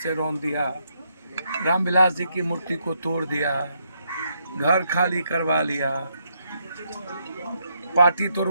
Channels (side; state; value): both; inverted; correlation -0.76